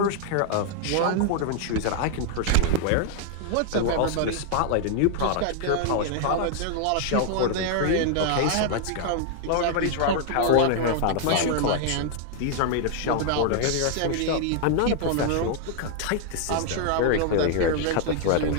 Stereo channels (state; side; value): different; both; correlation 0.00